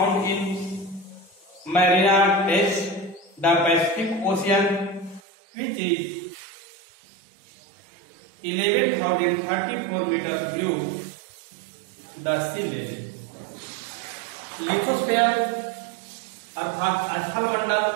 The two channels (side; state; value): left; drops out; at 5.2 s